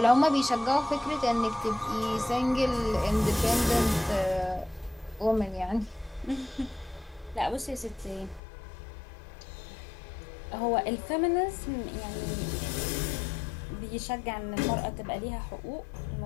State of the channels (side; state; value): right; drops out; at 8.4 s